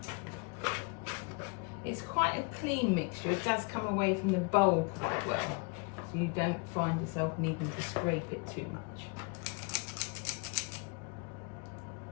It's quite a clean mixture. It does come away from the bowl quite well, so you don't find yourself needing to scrape it too much.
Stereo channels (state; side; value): quieter; right; 32.2 dB